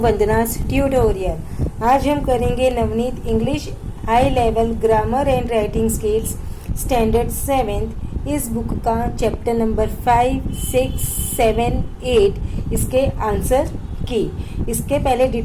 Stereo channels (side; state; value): both; identical; correlation 1.00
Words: Vandana's tutorial. आज हम करेंगे Navneet English high level grammar and writing skills standard 7th इस book का chapter number 5, 6, 7, 8 इसके आंसर की। इसके पहले